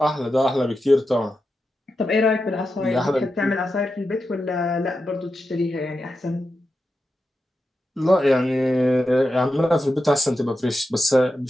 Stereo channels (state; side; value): normal; both; correlation 0.89